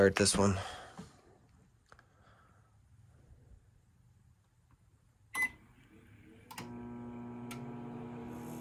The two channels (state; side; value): identical; both; correlation 1.00